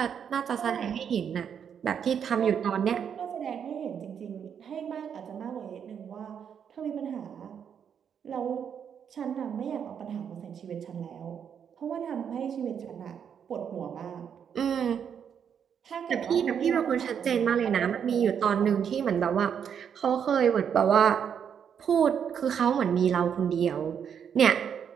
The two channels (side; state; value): left; quieter; 7.9 dB